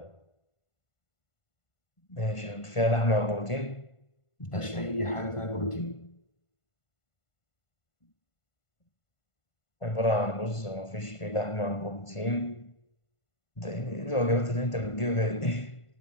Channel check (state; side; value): late; right; 1.5 ms